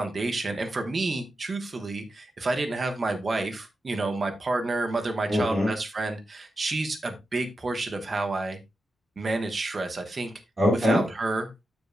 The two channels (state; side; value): normal; both; correlation 0.89